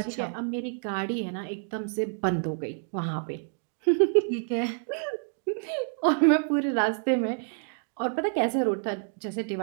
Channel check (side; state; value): left; silent; 57 dB below the other